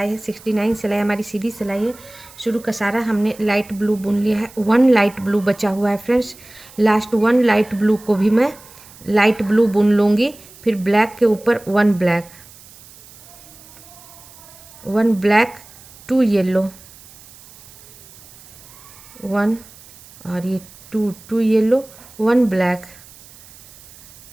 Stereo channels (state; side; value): noise; right; hiss, 22 dB below the sound